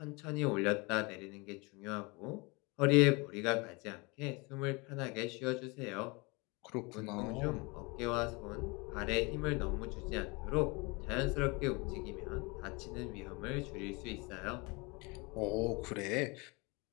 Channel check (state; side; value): quieter; right; 27.5 dB